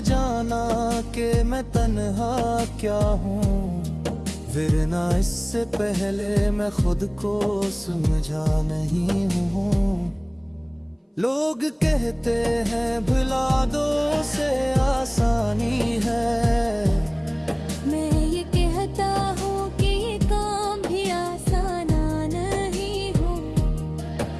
जाना कि मैं तन्हा क्या हूँ। वरना इससे पहले मैं खुद को समझा नहीं हूँ। लोग कहते हैं भुला दो से आसानी है। मैं ये कहता हूँ कि ये काम भी आसान नहीं हो।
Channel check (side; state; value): both; identical; correlation 1.00